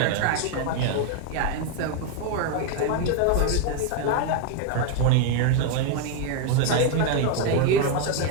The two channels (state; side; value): different; both; correlation 0.01